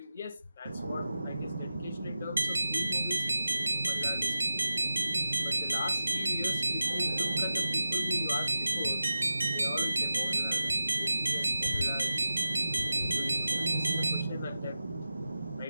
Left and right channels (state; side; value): inverted; both; correlation -0.91